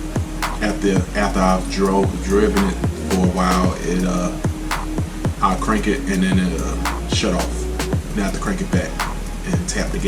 after I've driven it for a while. I'll crank it and then it'll shut off. Then I have to crank it back and tap the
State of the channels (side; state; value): both; identical; correlation 1.00